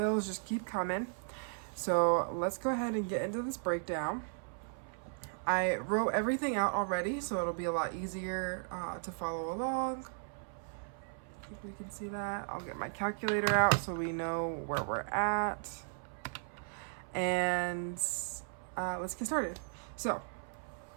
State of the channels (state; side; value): silent; left; 54 dB below the other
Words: just keep coming. So let's go ahead and get into this breakdown. I wrote everything out already, so it'll be a lot easier to follow along. I think we can see that. I'll get my calculator out so we know where we're at. And let's get started. So